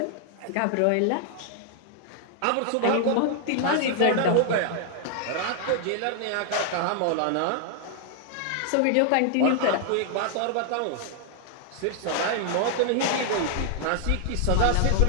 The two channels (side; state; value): both; different; correlation 0.00